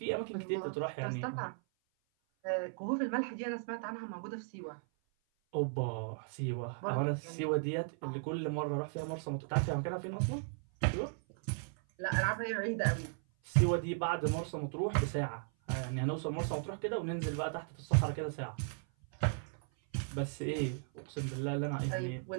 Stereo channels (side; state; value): left; silent; 54 dB below the other